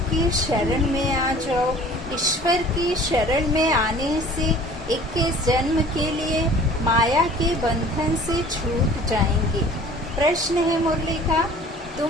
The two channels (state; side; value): normal; both; correlation 0.48